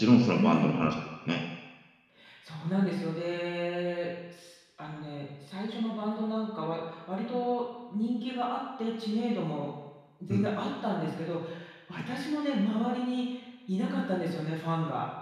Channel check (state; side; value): identical; both; correlation 1.00